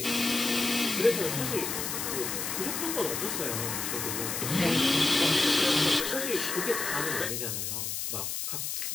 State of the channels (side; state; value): left; noise; hiss, 3 dB below the sound